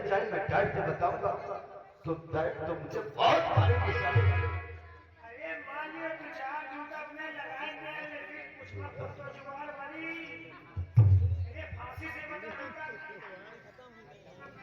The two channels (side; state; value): both; identical; correlation 1.00